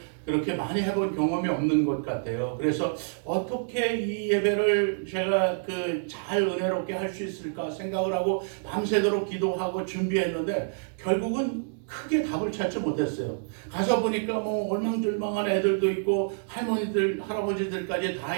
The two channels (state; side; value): silent; left; digital silence